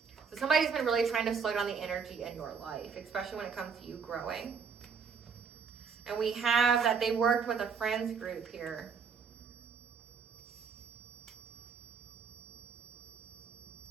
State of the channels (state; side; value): quieter; left; 6.0 dB